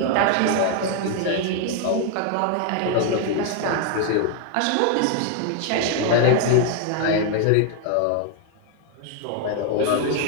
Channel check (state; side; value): different; both; correlation 0.00